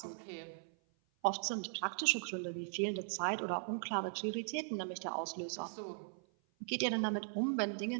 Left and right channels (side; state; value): left; silent; 52 dB below the other